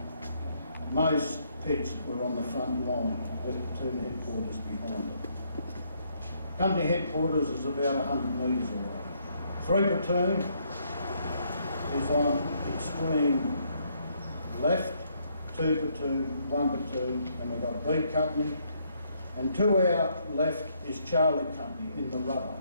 Most pits were on the front line with platoon headquarters behind it. Company headquarters is about 100 metres away. 3 platoon is on extreme left, 2 platoon, 1 platoon, and we've got B company. And to our left is Charlie company in the rudder,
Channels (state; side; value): inverted; both; correlation -0.71